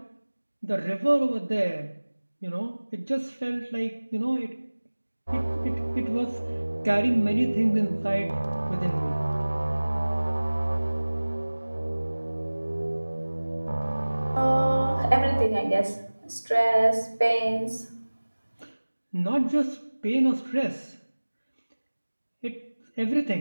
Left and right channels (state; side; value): inverted; both; correlation -1.00